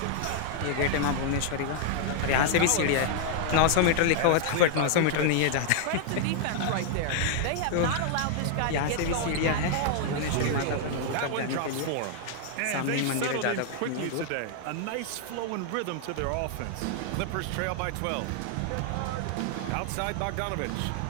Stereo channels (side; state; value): both; different; correlation 0.00